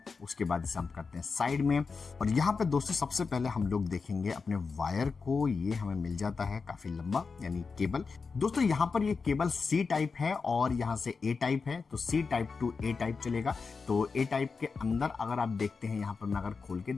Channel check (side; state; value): right; quieter; 4.9 dB